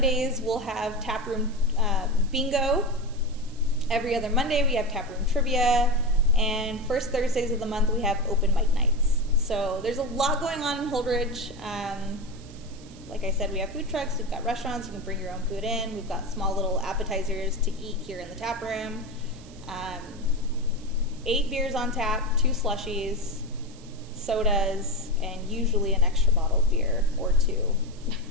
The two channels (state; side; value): noise; right; hiss, 23 dB below the sound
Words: we'll have taproom bingo. Every other Monday we have taproom trivia, and first Thursdays of the month we have open mic nights. So there's a lot going on in Holdrege. Like I said, we have food trucks, we've got restaurants, you can bring your own food in, we've got small little appetizers to eat here in the tap room. 8 beers on tap, 2 slushies, sodas, and usually an extra bottle of beer or 2.